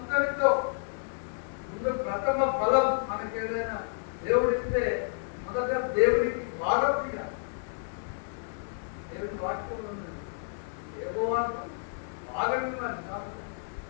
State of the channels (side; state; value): right; silent; 58 dB below the other